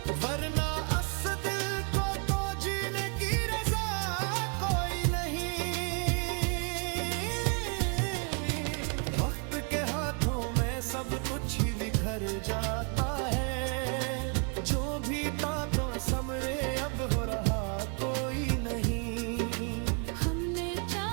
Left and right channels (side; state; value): left; quieter; 37.1 dB